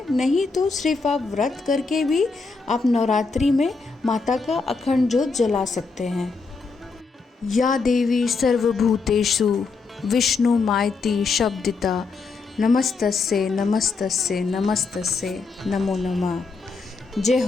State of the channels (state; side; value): quieter; right; 4.4 dB